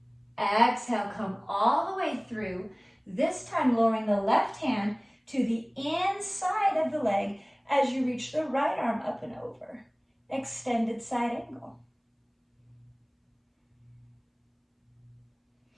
Exhale, come all the way through, this time lowering the left hand to the inside of the leg as you reach the right arm up and over. Extended side angle.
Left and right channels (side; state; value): both; identical; correlation 1.00